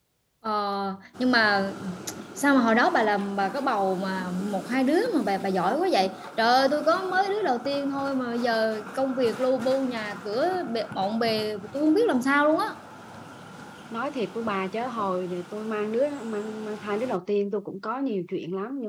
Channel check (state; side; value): identical; both; correlation 1.00